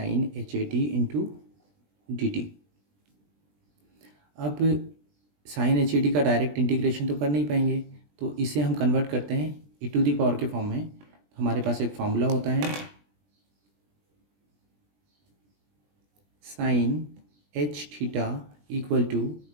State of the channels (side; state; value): left; late; 20 ms